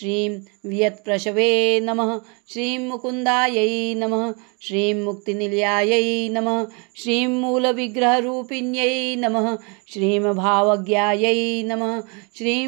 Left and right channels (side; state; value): left; quieter; 33.0 dB